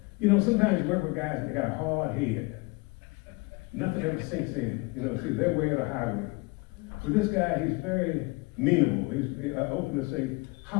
you know, sometimes you work with guys and they got a hard head. Nothing ever sinks in. You know, see, they're way of the highway. With this guy, he's very meanable. He's open to say,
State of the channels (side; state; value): right; quieter; 26.1 dB